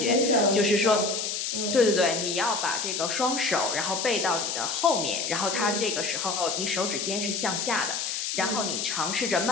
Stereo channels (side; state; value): left; noise; hiss, 2 dB below the sound